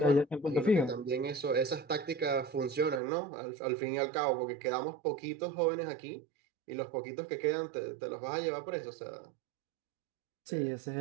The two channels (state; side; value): drops out; left; at 3.0 s